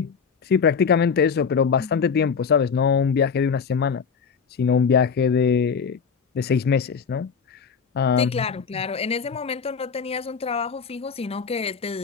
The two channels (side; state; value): right; quieter; 6.0 dB